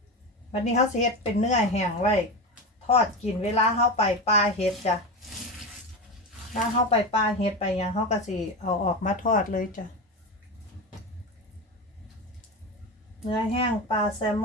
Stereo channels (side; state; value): both; normal; correlation 0.20